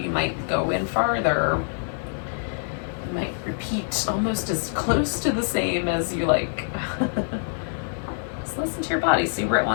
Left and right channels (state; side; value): silent; right; digital silence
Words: You might go in farther. You might repeat almost as close to the same as you like. Just listen to your body, see where it